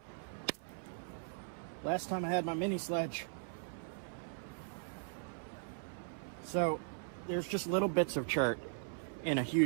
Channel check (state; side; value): silent; left; 52 dB below the other